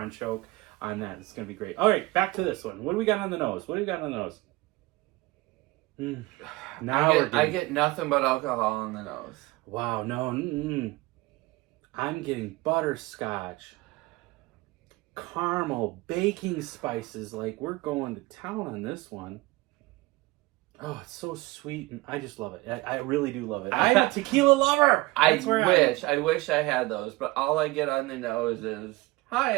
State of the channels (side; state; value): left; quieter; 21.4 dB